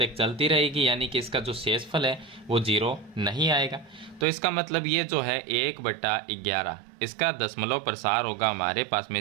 चलती रहेगी, यानी कि इसका जो शेषफल है वो 0 नहीं आएगा। तो इसका मतलब ये जो है 1/11 इसका दशमलव प्रसार होगा हमारे पास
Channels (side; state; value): left; drops out; at 4.2 s